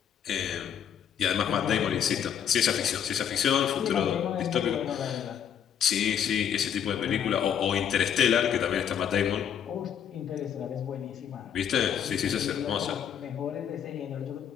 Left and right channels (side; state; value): right; quieter; 8.8 dB